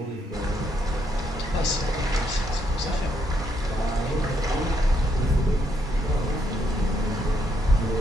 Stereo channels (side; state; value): both; normal; correlation 0.75